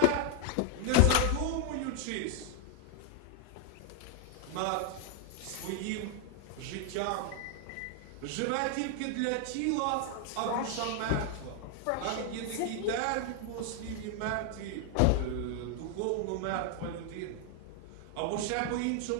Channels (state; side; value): different; both; correlation 0.00